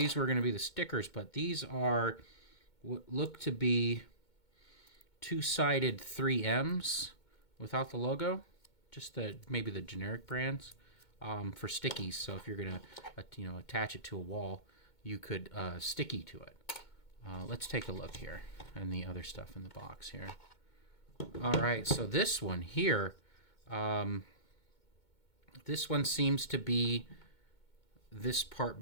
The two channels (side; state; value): right; late; 2.2 ms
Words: were going to be the stickers, but these are what look to be two-sided 3Ms without the logo, just maybe the generic brands for stickies. So if you're going to you know, attach it to a wall, you could sticky to it. Let's take a look here and the other stuff in the box here. All right, so this one here, this one seems to be this part